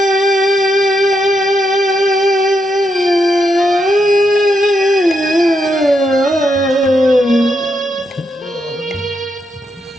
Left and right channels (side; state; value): both; normal; correlation 0.81